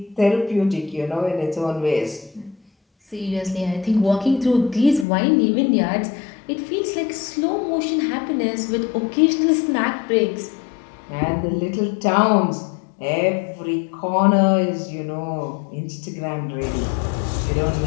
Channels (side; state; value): right; drops out; at 5.1 s